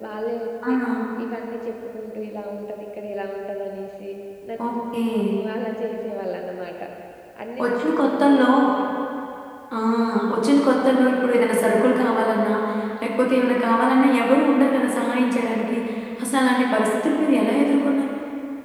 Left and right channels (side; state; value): both; identical; correlation 1.00